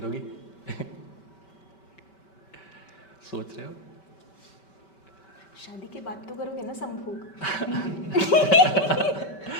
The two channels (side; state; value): right; late; 5.2 ms